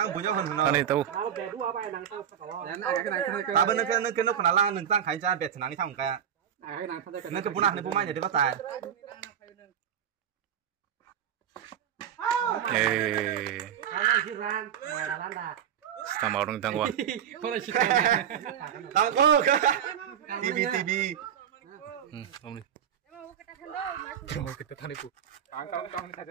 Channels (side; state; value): left; quieter; 9.1 dB